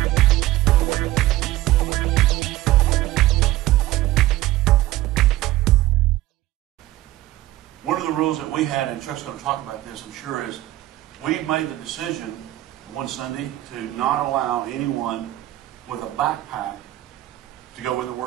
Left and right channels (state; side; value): quieter; left; 16.1 dB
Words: of the rules that we had, and Chuck's going to talk about this, I'm sure, is we made the decision one Sunday to not allow anyone with a backpack to go in the